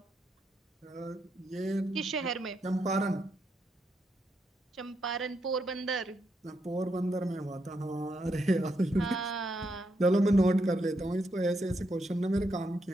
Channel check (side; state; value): both; normal; correlation 0.80